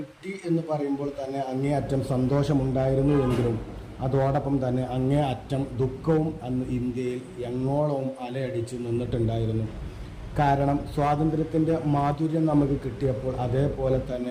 എന്ന് പറയുമ്പോൾ തന്നെ അങ്ങേയറ്റം സന്തോഷമുണ്ടായിരുന്നു എങ്കിലും അതോടൊപ്പം തന്നെ അങ്ങേയറ്റം ദുഃഖവും അന്ന് ഇന്ത്യയിൽ എങ്ങോളവും അലയടിച്ച് നിന്നിട്ടുണ്ടായിരുന്നു. കാരണം സ്വാതന്ത്ര്യത്തിൻ്റെ മാധുര്യം നമുക്ക് കിട്ടിയപ്പോൾ അതേപോലെ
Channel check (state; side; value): identical; both; correlation 1.00